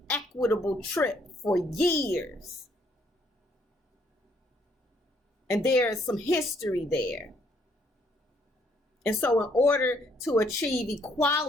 trip for years. And there's some history there. And so in order to achieve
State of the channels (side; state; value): both; normal; correlation 0.68